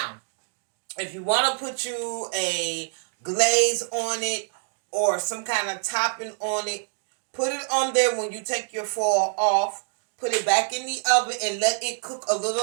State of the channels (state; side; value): silent; left; 61 dB below the other